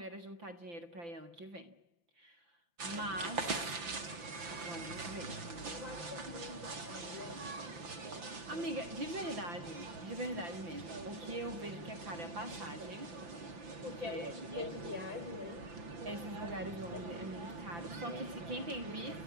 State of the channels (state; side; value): late; left; 5.9 ms